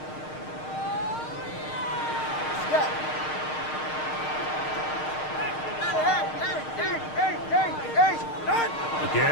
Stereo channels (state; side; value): late; right; 6.5 ms